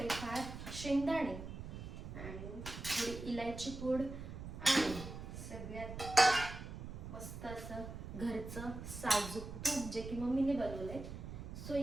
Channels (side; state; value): right; noise; rumble, 9 dB below the sound